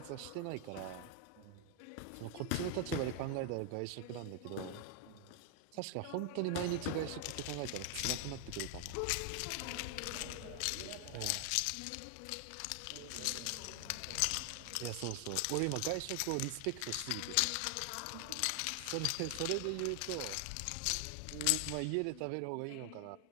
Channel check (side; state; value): both; different; correlation 0.00